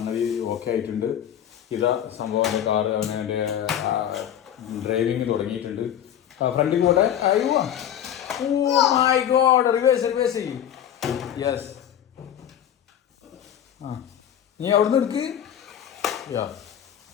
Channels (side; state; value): right; quieter; 10.1 dB